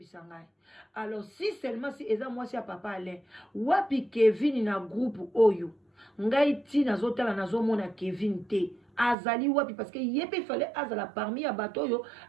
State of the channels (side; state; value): left; drops out; at 9.2 s